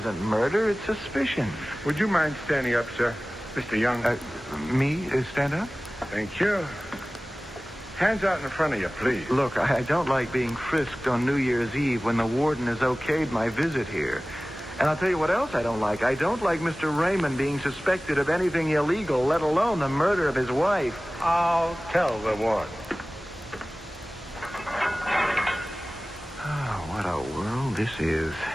murder, it's suspicion. Would you mind standing up, sir? Mr. Young. Me? Stand up? Thank you. Hands out in front of you, please. Look, I don't like being frisked on New Year's Eve when the warden has okayed my visit here. And I'll tell you what else I don't like. I don't like Mr. Raymond being suspected of anything illegal, let alone the murder of his wife. I'll tell the warden. Oh, what a world this is.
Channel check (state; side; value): normal; both; correlation 0.97